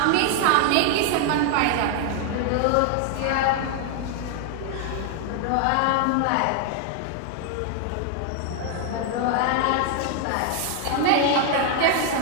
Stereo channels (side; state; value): both; different; correlation 0.00